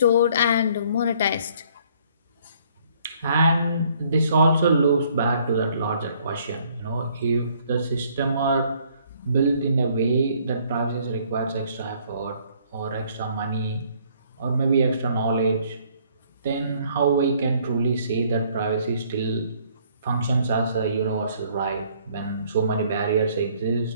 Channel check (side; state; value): both; inverted; correlation -0.62